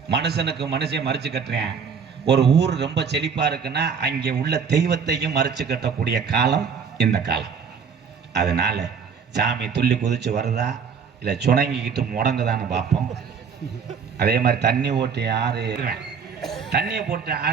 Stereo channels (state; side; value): quieter; left; 6.3 dB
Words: மனுஷனுக்கு மனுஷன் மறிச்சு கட்டுறேன். ஒரு ஊர் ரொம்ப செழிப்பா இருக்குன்னா அங்கே உள்ள தெய்வத்தையும் மறிச்சு கட்டக்கூடிய காலம் இந்த காலம். அதனால சாமி துள்ளி குதிச்சு வருதா இல்லை சுணங்கிக்கிட்டு முடங்குதான்னு பார்ப்போம். அதே மாதிரி தண்ணி ஓட்டி ஆறு தண்ணியை போட்டு